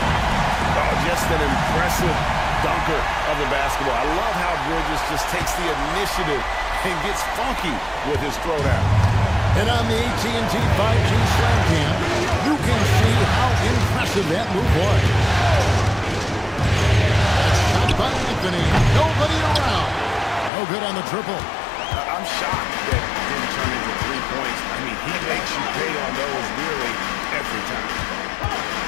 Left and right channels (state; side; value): drops out; right; at 20.5 s